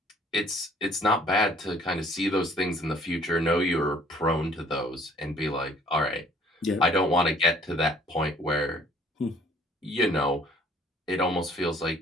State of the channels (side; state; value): both; normal; correlation 0.58